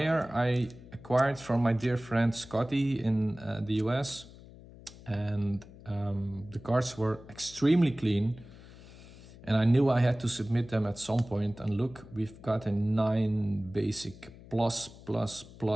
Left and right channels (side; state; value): left; noise; hum, 19 dB below the sound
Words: I acquired from my dear friend Scotty in the US. And the cards were extremely clean. And I knew I had to submit them at some point. And look, we've got a 9 basic plus, plus,